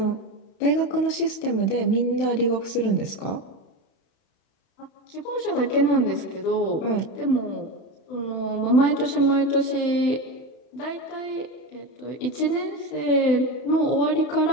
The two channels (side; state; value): right; late; 31 ms